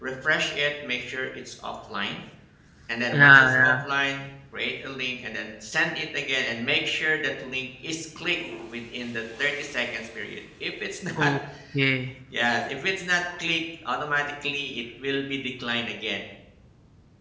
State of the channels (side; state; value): both; identical; correlation 1.00